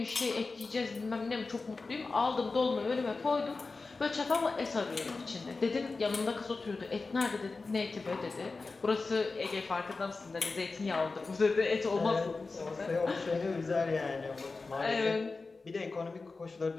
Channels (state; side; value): quieter; right; 3.9 dB